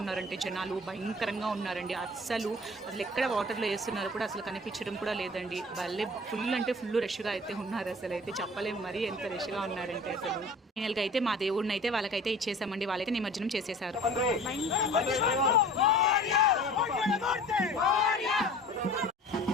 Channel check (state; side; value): normal; both; correlation 0.44